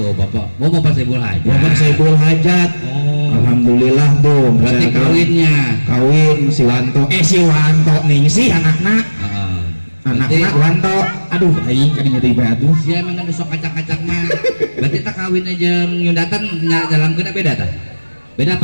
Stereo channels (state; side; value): inverted; both; correlation -1.00